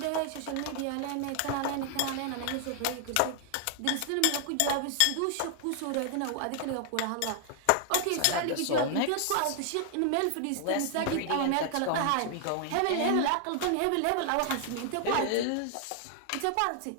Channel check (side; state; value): both; different; correlation 0.00